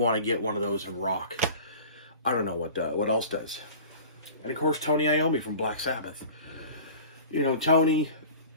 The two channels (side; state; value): both; inverted; correlation -0.41